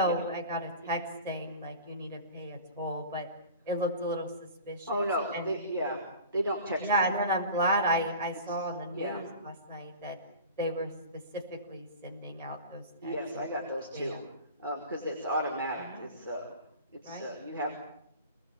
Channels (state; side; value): inverted; both; correlation -0.37